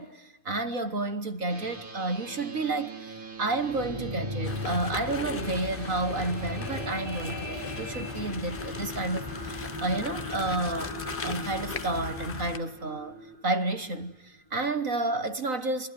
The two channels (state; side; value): late; left; 2.5 ms